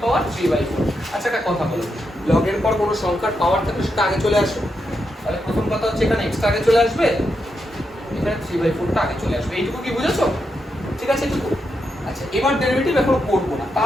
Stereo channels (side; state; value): both; normal; correlation 0.84